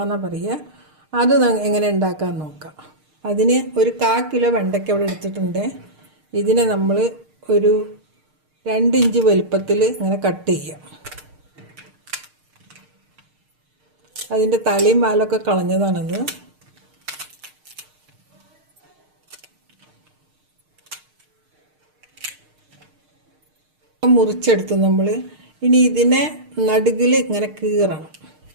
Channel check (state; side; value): late; left; 6.5 ms